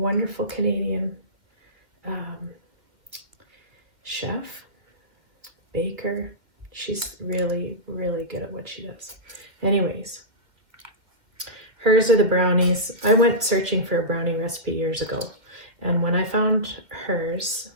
Canadian chef, baker. She's really, really good at what she does. Anyways, hers are the brownies. I went searching for a brownie recipe years ago, and when I found hers,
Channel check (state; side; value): late; left; 2.0 ms